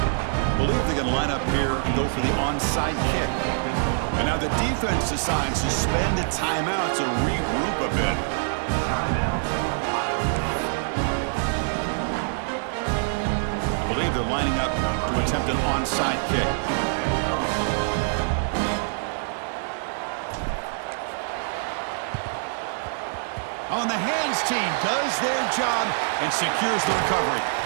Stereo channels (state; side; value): silent; left; 62 dB below the other